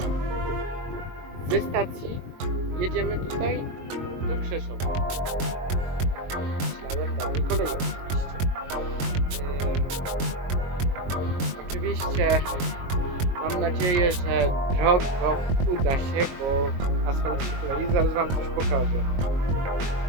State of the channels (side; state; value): left; late; 22 ms